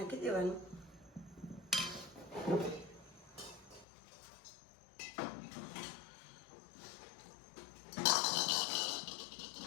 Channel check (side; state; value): right; drops out; at 3.9 s